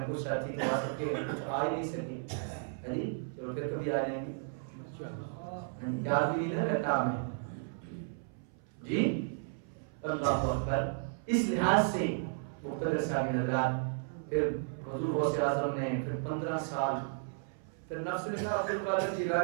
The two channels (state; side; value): silent; left; 55 dB below the other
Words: کچھ ساتھی کو آ سکے, کچھ آ ہی نہیں سکے جی, چلو پھر کبھی آ جائیں گے, یاد بھی نہیں رہتا ہمیں جی. اللہ اکبر. اس لحاظ سے مقتدر صاحب حضرات, پھر حضور غوث اعظم نے پھر 15 سال, پھر نفس نے کہا عبد القادر